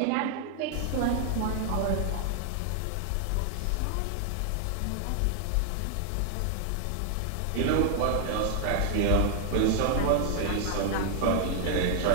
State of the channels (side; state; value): both; different; correlation 0.00